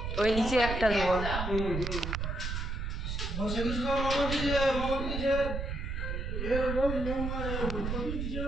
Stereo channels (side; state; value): right; noise; rumble, 3 dB below the sound